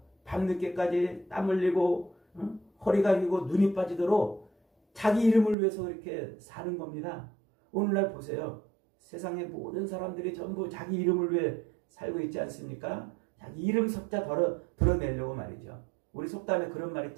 밤늦게까지 땀 흘리고 허리가 휘고 눈이 빠지도록 자기 이름을 위해서 그렇게 사는 겁니다. 오늘날 보세요. 세상의 모든 사람들이 전부 자기 이름을 위해 살고 있지 않습니까? 자기 이름 석자 드러내려고 말이죠. 우리 속담에 그런 말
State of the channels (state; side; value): drops out; left; at 5.6 s